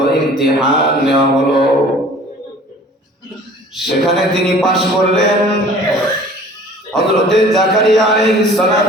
ইমতিহান নেওয়া হলো। সেখানে তিনি পাশ করলেন। হযরত জাকারিয়া আলাইহিস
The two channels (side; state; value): both; normal; correlation 0.48